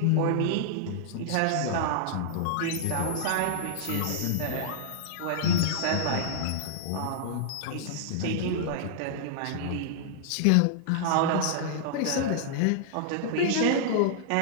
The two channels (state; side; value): different; both; correlation -0.01